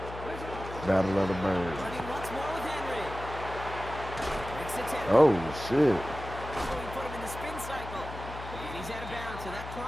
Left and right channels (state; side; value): noise; left; hum, 10 dB below the sound